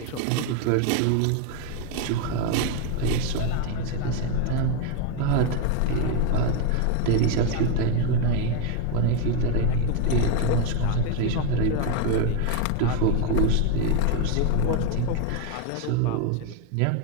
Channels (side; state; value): both; different; correlation 0.01